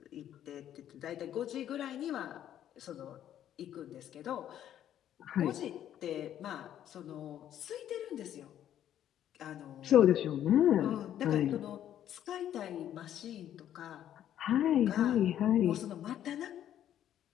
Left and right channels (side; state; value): right; quieter; 10.9 dB